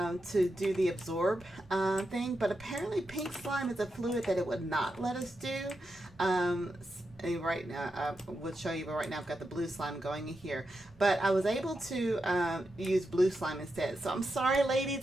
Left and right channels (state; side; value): normal; both; correlation 0.87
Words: do the absorb thing, but apparently pink slime is a fluid that it would not let us do. Right now, I would show you, but right now I've got the blue slime going in here. But I was able to use blue slime instead. So I'm sorry,